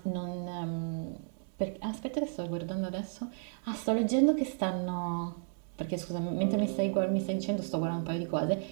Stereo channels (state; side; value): silent; left; digital silence